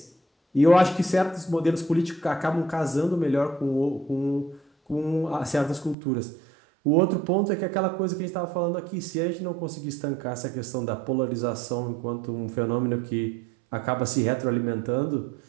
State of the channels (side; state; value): left; drops out; at 6.0 s